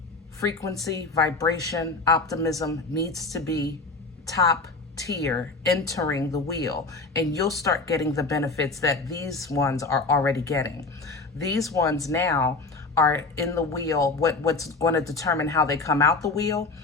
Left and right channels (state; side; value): quieter; right; 3.8 dB